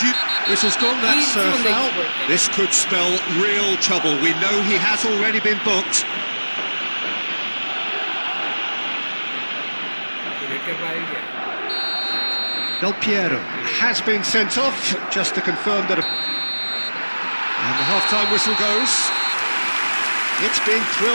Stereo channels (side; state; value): both; inverted; correlation -1.00